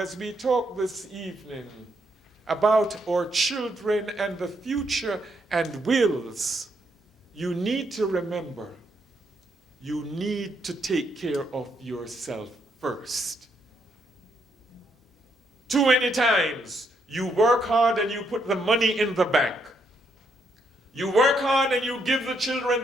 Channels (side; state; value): both; normal; correlation 0.75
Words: we talk this evening about our children and the future and wills, you need to remember, you need to take care of yourself first. Too many times, you work hard and you put the money in the bank. You work hard and you give the children